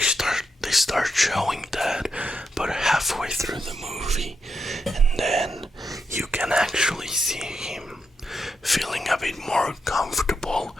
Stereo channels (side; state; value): both; normal; correlation 0.83